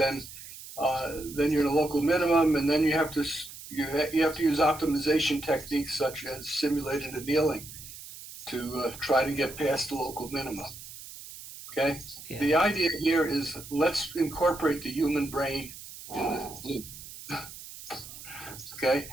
you're in a local minimum, and then you have to use optimization techniques such as simulated annealing to try to get past the local minima. Okay. Yeah. The idea here is let's incorporate the human brain in the loop. Okay,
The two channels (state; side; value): noise; right; hiss, 14 dB below the sound